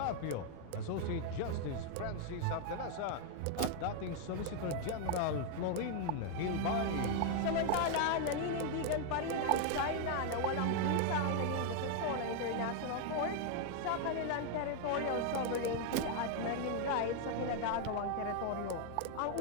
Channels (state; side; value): different; both; correlation 0.00